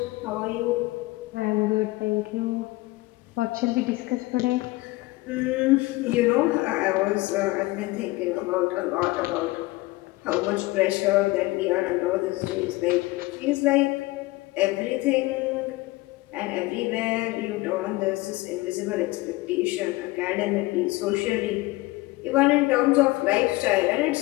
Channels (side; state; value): right; quieter; 20.7 dB